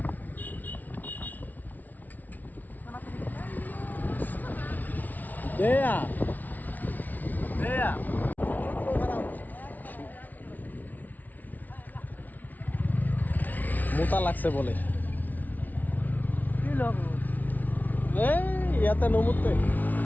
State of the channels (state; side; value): late; right; 0.078 ms